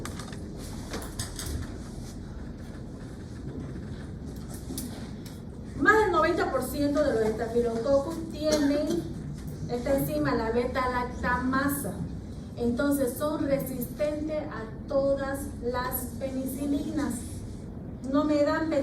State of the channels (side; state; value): both; identical; correlation 1.00